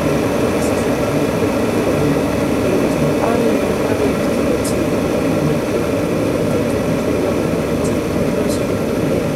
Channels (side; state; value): both; identical; correlation 1.00